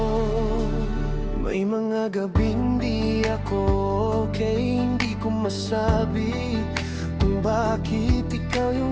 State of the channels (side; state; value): both; identical; correlation 1.00